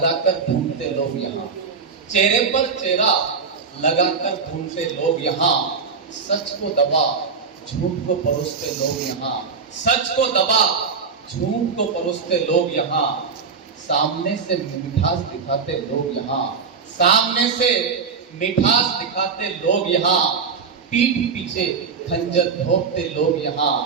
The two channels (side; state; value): left; quieter; 5.4 dB